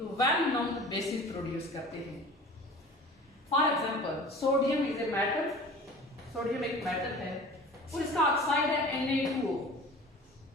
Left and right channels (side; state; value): both; normal; correlation 0.41